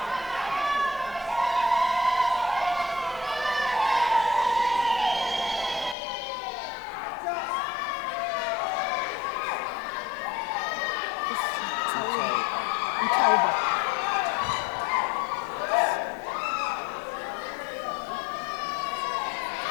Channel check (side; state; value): right; drops out; at 6.0 s